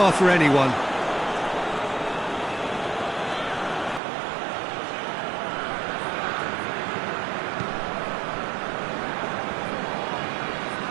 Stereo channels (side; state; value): left; drops out; at 4.0 s